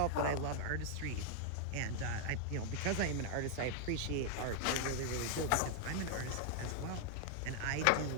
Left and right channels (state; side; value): different; both; correlation 0.00